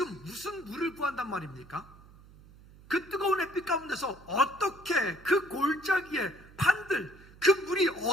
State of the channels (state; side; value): noise; right; hum, 22 dB below the sound